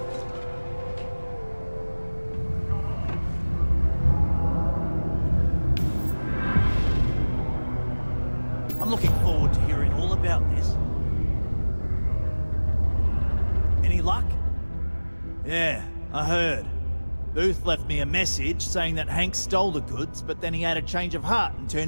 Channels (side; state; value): both; inverted; correlation -1.00